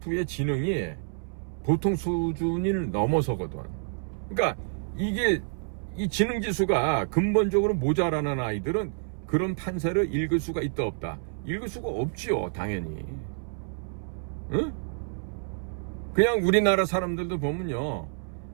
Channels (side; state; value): left; silent; 59 dB below the other